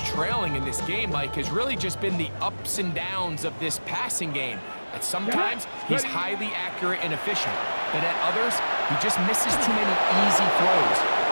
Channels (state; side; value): inverted; both; correlation -1.00